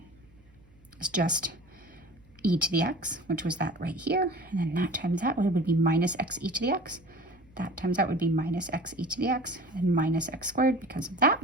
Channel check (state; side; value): noise; right; hum, 29 dB below the sound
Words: is just e to the x, which was that right here. And then that times that would be minus x e to the x. That times that would be minus x e to the x and minus x squared because of that.